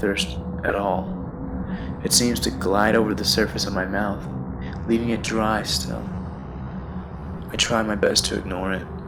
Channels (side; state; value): both; identical; correlation 1.00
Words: at all. It seems to glide over the surface of my mouth, leaving it dry still. I try my best to ignore it